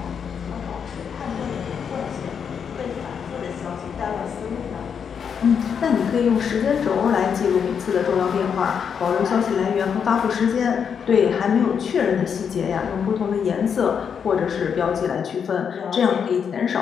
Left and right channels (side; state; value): right; quieter; 7.1 dB